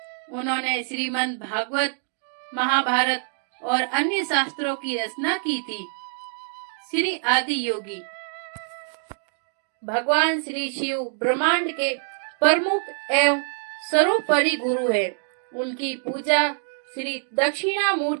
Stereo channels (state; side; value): silent; left; digital silence